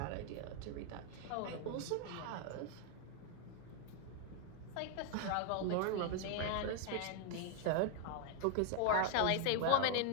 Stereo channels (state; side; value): different; both; correlation 0.01